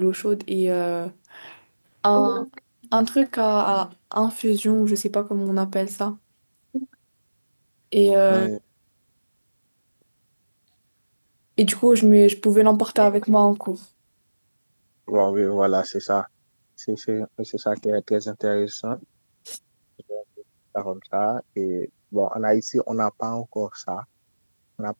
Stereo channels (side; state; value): both; inverted; correlation -1.00